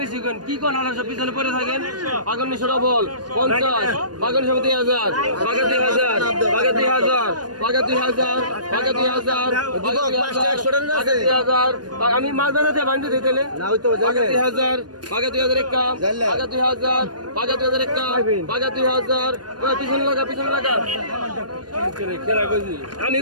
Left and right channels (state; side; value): late; left; 0.69 ms